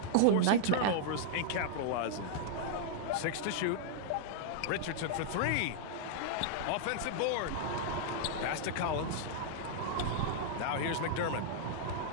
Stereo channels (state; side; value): different; both; correlation -0.01